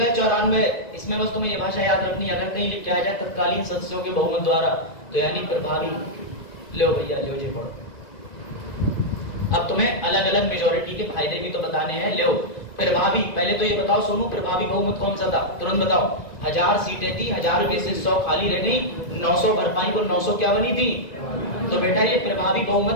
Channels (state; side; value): late; right; 1.9 ms